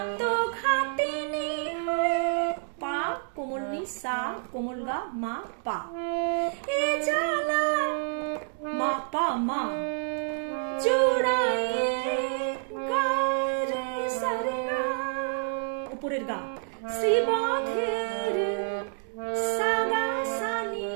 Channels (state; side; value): silent; left; digital silence